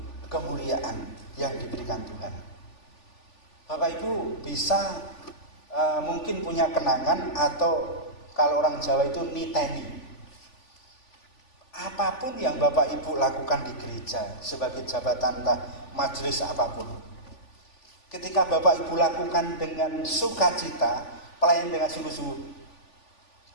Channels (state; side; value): late; right; 3.4 ms